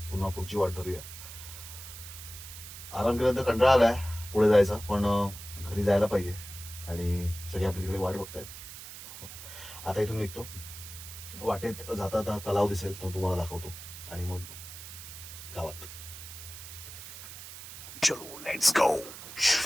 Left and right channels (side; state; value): right; noise; hiss, 12 dB below the sound